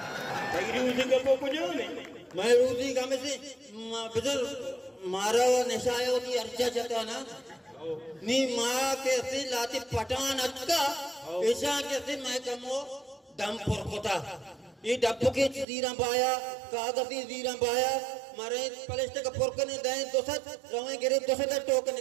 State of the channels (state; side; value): drops out; left; at 15.7 s